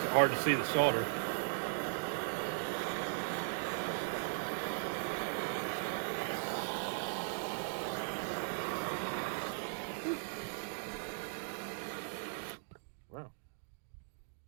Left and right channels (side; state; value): left; silent; digital silence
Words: it hard to see the solder. Wow.